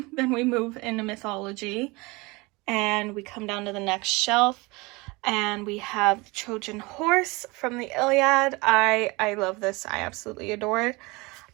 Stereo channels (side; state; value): left; quieter; 24.6 dB